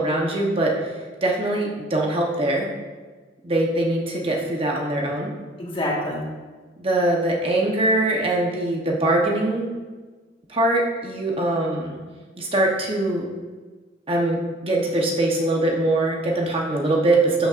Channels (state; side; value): normal; both; correlation 0.50